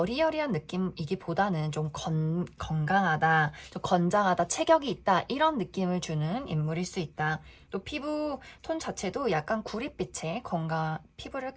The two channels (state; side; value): identical; both; correlation 1.00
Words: 느낌이기보다는 좀 건강하다, 좀 건장하다, 체격이 있다, 이런 느낌을 주는 인물일 수 있다. 또 피부 톤 자체도 약간 구릿빛의 건강 피부를